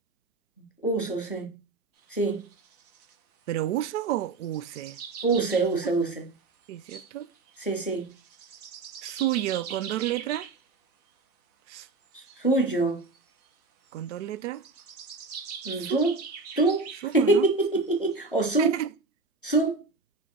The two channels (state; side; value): quieter; left; 3.8 dB